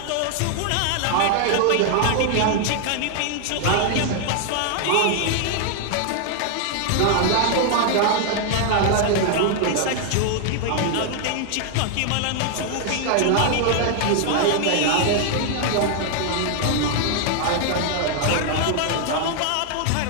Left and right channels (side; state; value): both; different; correlation 0.00